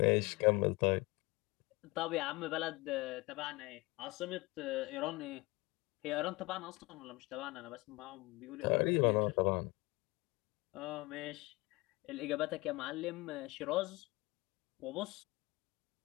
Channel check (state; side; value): quieter; right; 23.0 dB